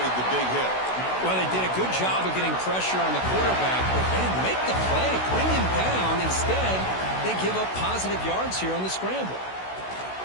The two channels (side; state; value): right; late; 16 ms